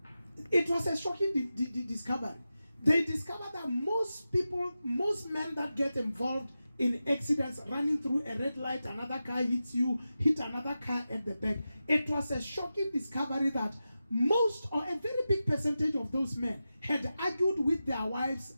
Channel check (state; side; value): inverted; both; correlation -0.92